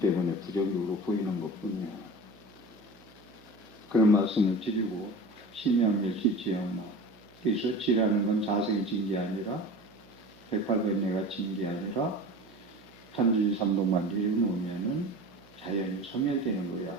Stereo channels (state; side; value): noise; right; hum, 26 dB below the sound